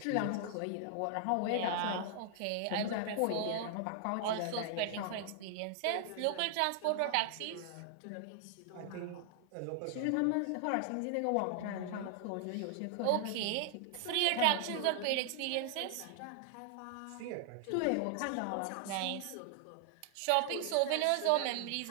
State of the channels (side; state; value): both; different; correlation 0.00